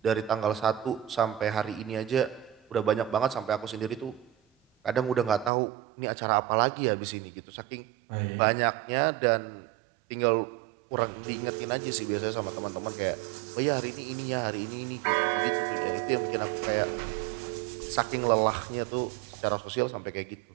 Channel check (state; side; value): drops out; left; at 5.5 s